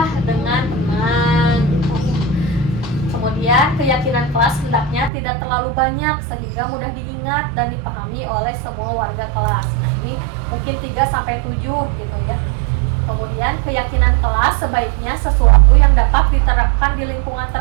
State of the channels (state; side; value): drops out; left; at 5.1 s